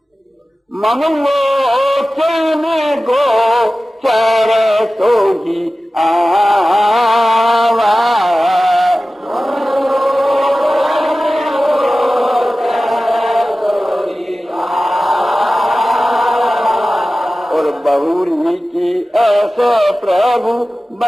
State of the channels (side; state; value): both; normal; correlation 0.96